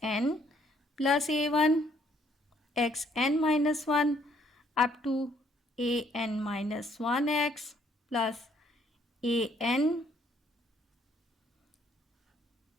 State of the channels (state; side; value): normal; both; correlation 0.66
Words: एन प्लस ए वन एक्स एन माइनस वन अप टू ए एन माइनस वन एक्स प्लस ए एन